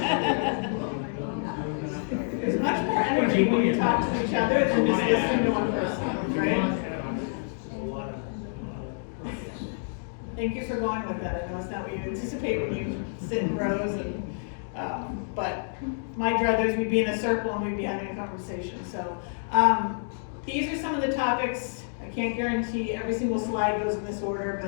There's much more energy when you talk to each other than just listening to one person, right? Thank you for going with that. I know it's not what you anticipate when you sit in rows and, but my druthers, we'd be in a circle and we'd be having a conversation. So, these are some of the topics. I can't guarantee every single slide goes in this order,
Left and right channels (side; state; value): right; silent; digital silence